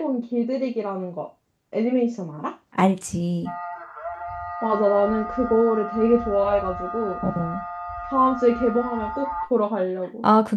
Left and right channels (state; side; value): identical; both; correlation 1.00